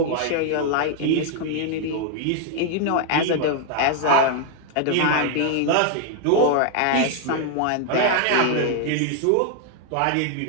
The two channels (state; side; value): different; both; correlation 0.00